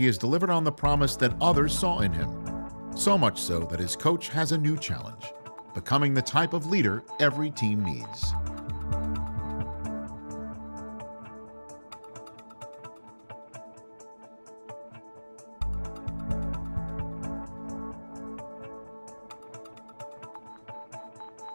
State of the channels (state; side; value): inverted; both; correlation -1.00